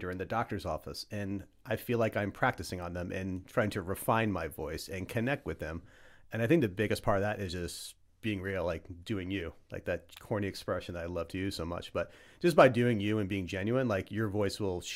or in the doctor's office, and I feel like I'm practicing on them and trying to refine my voice and connect with them. And I think the biggest part of that is just being real, like doing you, like that corny expression that I love to use so much. But just by doing you and being genuine, like your voice will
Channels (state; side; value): identical; both; correlation 1.00